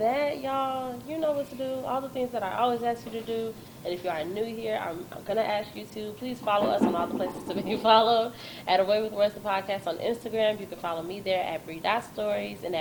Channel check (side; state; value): both; identical; correlation 1.00